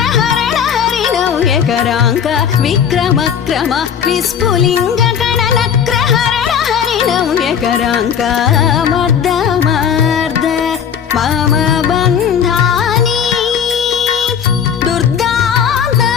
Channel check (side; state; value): right; quieter; 7.8 dB